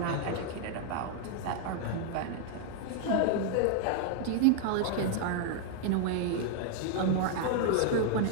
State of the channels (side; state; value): both; different; correlation 0.00